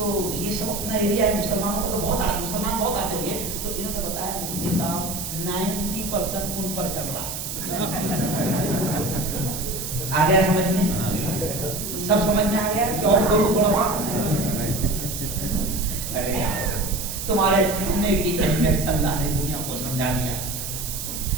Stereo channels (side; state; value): right; noise; hiss, 6 dB below the sound